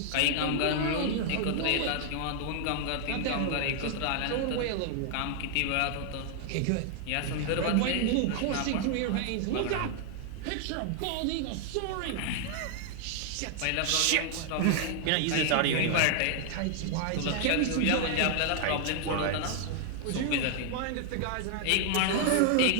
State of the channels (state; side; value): different; both; correlation 0.00